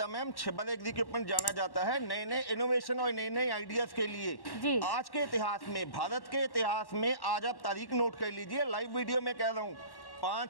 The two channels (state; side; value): late; right; 1.1 ms